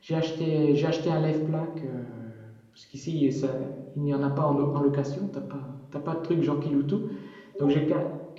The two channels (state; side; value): identical; both; correlation 1.00